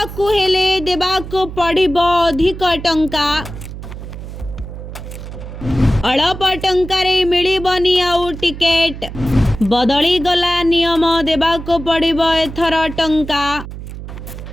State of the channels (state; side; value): noise; right; hum, 11 dB below the sound